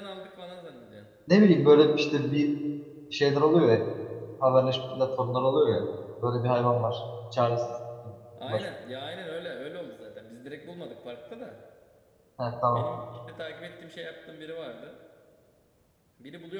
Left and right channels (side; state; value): both; identical; correlation 1.00